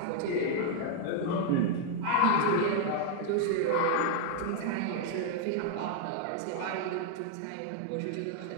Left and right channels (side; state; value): both; different; correlation 0.00